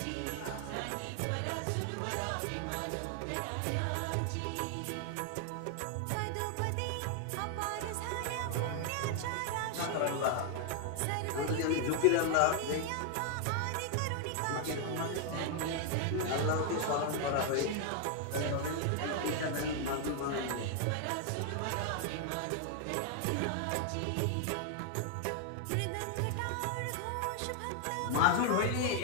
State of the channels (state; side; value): different; both; correlation 0.00